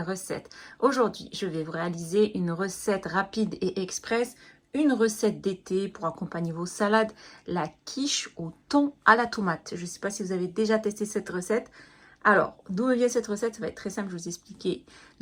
recettes. Aujourd'hui, je vais vous réaliser une recette rapide et express, une recette d'été pour accompagner vos salades, la quiche au thon à la tomate. Je ne sais pas si vous avez déjà testé cette recette. Alors, d'où vient cette recette? Ça va être très simple, je vais vous expliquer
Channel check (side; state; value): both; identical; correlation 1.00